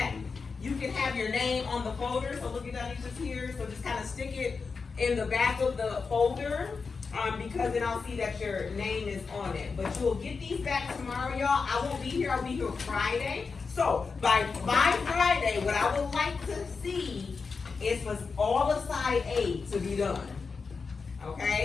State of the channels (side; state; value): right; quieter; 4.9 dB